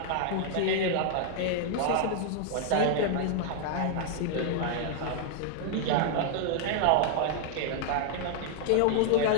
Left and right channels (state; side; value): different; both; correlation 0.00